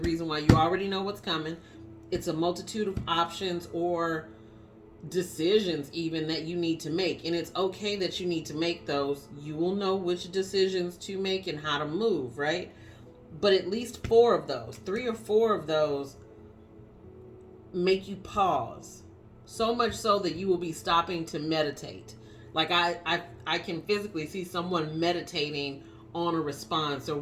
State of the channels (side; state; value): both; identical; correlation 1.00